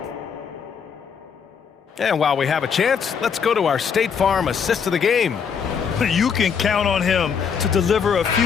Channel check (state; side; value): quieter; right; 6.7 dB